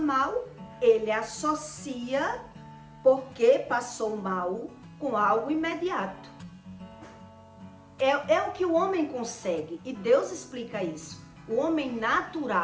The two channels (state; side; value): identical; both; correlation 1.00